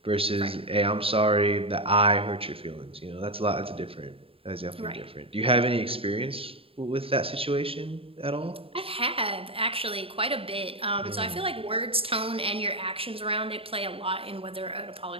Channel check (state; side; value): late; left; 0.27 ms